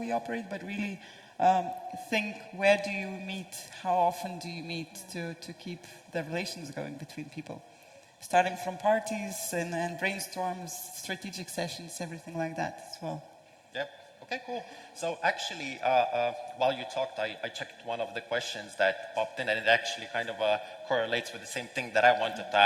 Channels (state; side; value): identical; both; correlation 1.00